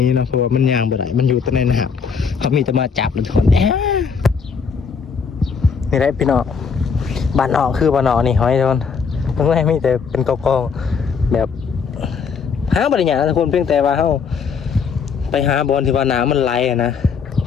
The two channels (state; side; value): quieter; right; 5.9 dB